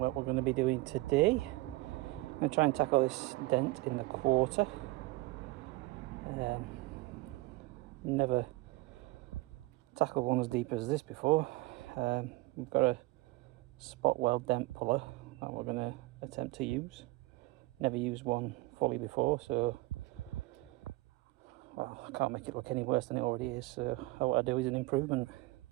we're going to be doing today. I'm going to try and tackle this dent in the quarter. Never tackled one as deep as this before. We've got a spot weld dent puller that we're going to attempt to use. Never used one fully before, so well, I can't make it look any worse than it already is, so what I do is an improvement.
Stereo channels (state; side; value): quieter; left; 20.7 dB